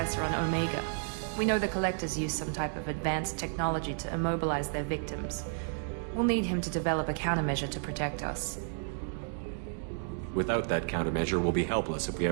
on Omega. We know the Collectors use some type of advanced technology to immobilize their victims. We'll need him to develop a countermeasure to protect us. Without that countermeasure, we'll be helpless if we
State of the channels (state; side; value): silent; left; digital silence